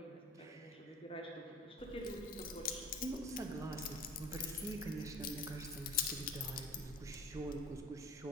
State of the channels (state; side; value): normal; both; correlation 0.41